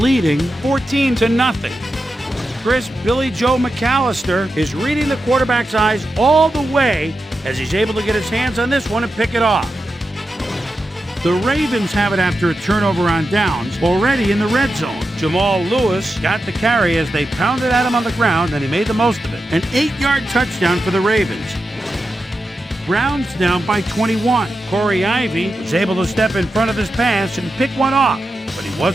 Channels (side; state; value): both; normal; correlation 0.89